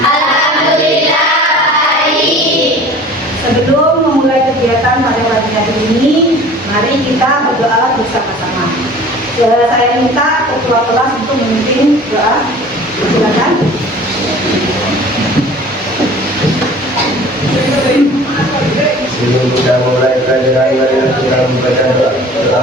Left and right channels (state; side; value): normal; both; correlation 0.45